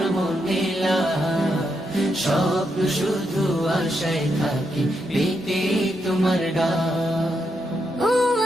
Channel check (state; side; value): normal; both; correlation 0.82